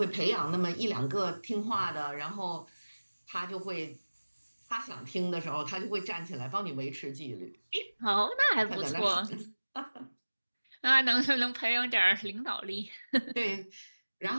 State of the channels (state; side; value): inverted; both; correlation -1.00